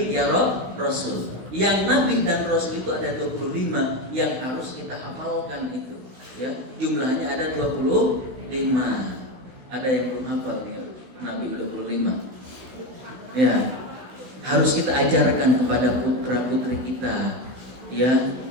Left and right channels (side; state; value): left; late; 16 ms